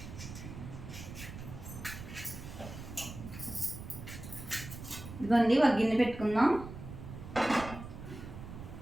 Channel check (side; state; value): right; noise; rumble, 11 dB below the sound